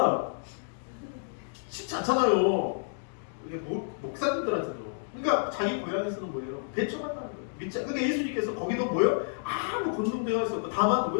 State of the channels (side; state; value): right; silent; digital silence